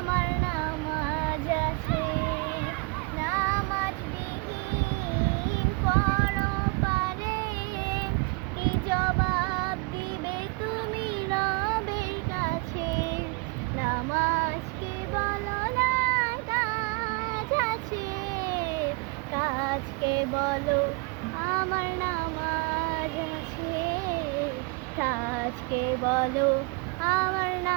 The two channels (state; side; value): quieter; left; 29.9 dB